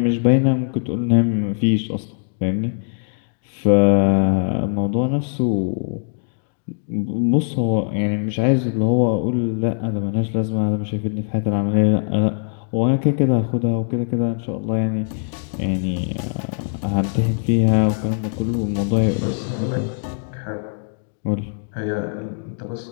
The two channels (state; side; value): silent; right; 65 dB below the other